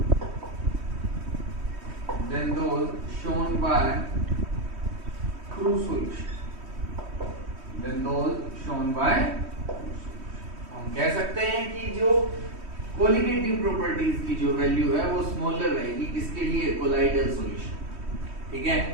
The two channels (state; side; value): late; left; 3.1 ms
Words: shown by true solution, हम कह सकते हैं कि जो कोलिगेटिव प्रॉपर्टीज की जो वैल्यू है वो स्मॉलर रहेगी, किसके लिए? कोलाइडल सॉल्यूशन, ठीक है।